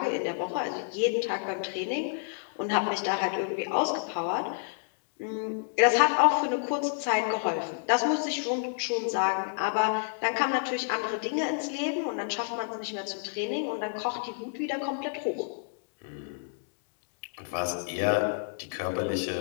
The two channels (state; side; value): silent; right; digital silence